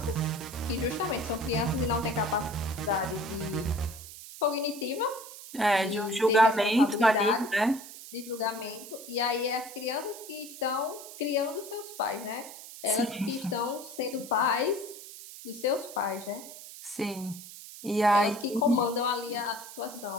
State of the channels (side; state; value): right; noise; hiss, 14 dB below the sound